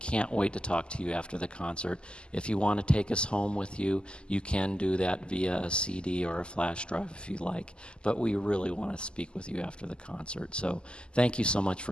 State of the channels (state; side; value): late; right; 0.050 ms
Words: wait to talk to you after the concert. If you want to take us home with you, you can do that via a CD or a flash drive if you like. But we really want to speak with you after the concert. So thank you so much